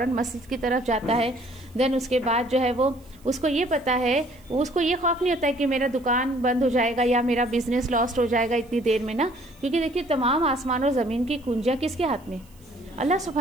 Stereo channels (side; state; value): right; noise; hiss, 29 dB below the sound